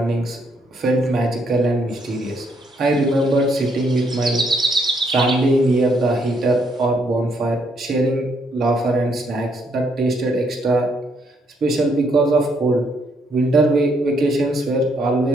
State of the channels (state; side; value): normal; both; correlation 0.72